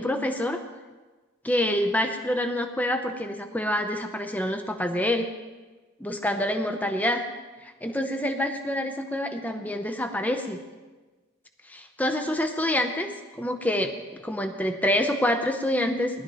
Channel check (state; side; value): normal; both; correlation 0.66